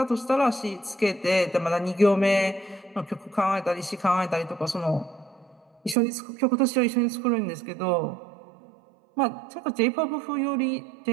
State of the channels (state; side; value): drops out; left; at 6.0 s